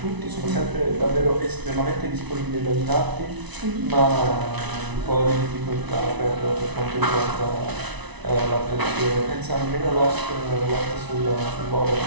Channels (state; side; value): late; left; 1.0 ms